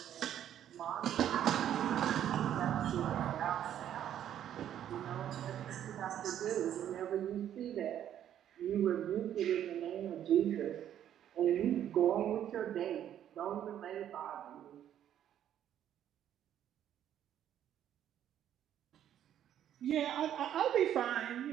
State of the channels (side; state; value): left; quieter; 10.6 dB